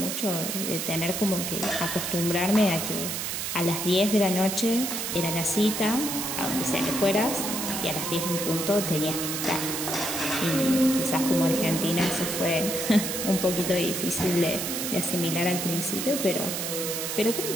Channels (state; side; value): noise; right; hiss, 3 dB below the sound